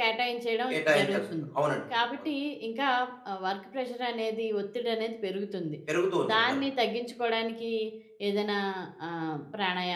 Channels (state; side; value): identical; both; correlation 1.00